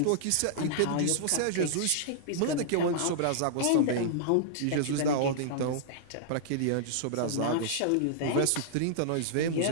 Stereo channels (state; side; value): different; both; correlation -0.02